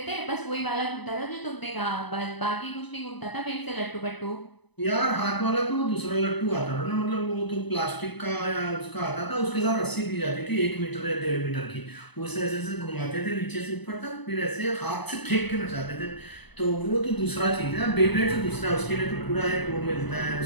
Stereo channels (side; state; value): right; late; 0.99 ms